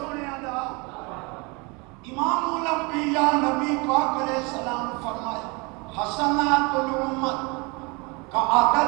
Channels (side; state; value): left; quieter; 28.5 dB